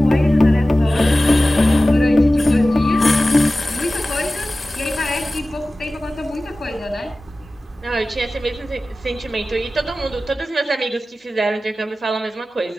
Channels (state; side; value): normal; both; correlation 0.96